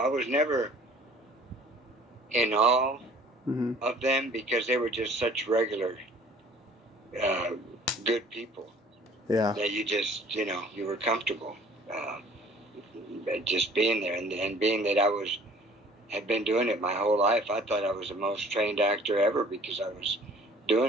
was never in awe of them because they were just such regular, good people. Yeah. That you just, you were comfortable just being there. And being that I had been doing it my whole life, I thought I was the most trained actor ever because I was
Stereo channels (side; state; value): both; normal; correlation 0.52